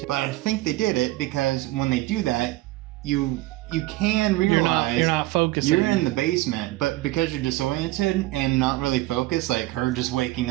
But I think they did it because when they do that, you you can realize you're not focusing. You're in the basement, but because you're disoriented and not really focused, like her just waking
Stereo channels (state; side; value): quieter; left; 18.5 dB